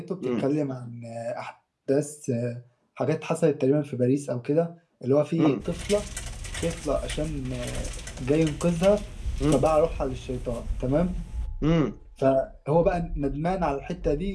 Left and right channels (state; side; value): identical; both; correlation 1.00